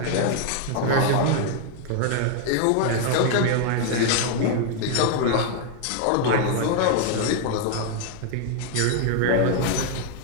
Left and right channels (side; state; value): both; different; correlation 0.00